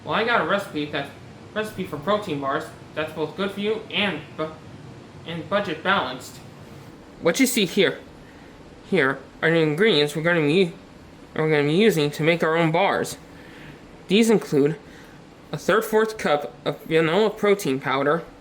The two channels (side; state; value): both; identical; correlation 1.00